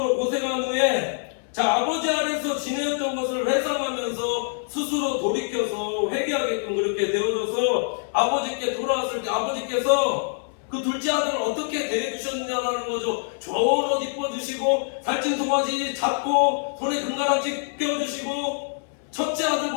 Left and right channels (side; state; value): right; silent; digital silence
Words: 고생한 후에 아버지 아래서 지내었던 것을 회상하면서 스스로 돌이켜서 회개하게끔 그렇게 되어져서 아버지께 돌아왔을 때 아버지께서 그 둘째 아들을 어떻게 대해주셨느냐라는 거죠. 좋은 옷 입어주시고 살찐 송아지 잡고 손에 금가락지 껴주시고 첫째